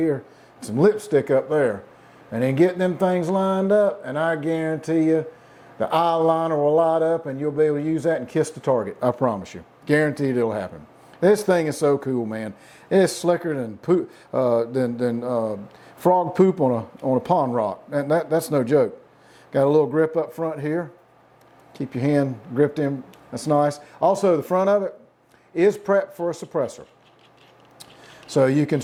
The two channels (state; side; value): identical; both; correlation 1.00